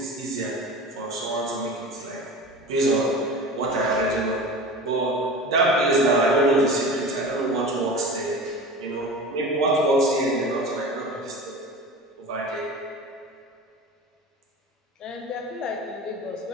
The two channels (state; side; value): normal; both; correlation 0.33